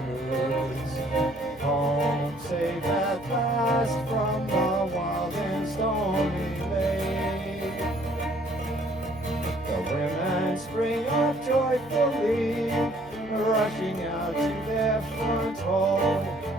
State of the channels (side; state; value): right; noise; hum, 23 dB below the sound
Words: Home safe at last from the wild and stormy lake. The women spring up joyfully, rushing out to their front hall,